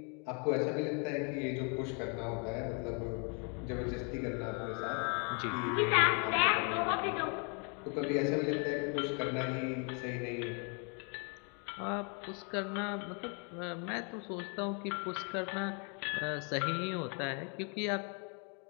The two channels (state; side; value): quieter; right; 36.7 dB